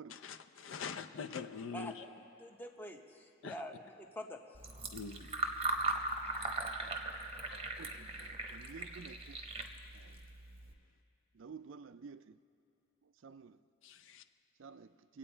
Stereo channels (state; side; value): normal; both; correlation -0.13